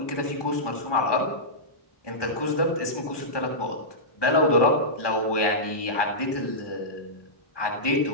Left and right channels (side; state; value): right; late; 1.2 ms